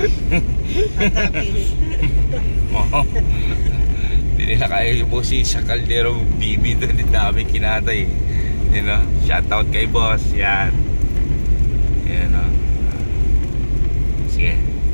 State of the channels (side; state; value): both; inverted; correlation -1.00